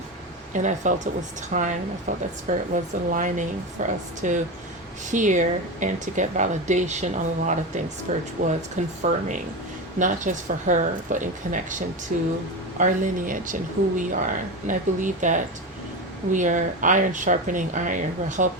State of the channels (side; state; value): both; normal; correlation 0.21